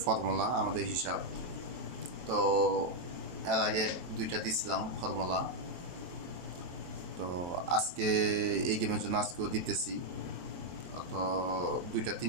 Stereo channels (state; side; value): late; left; 23 ms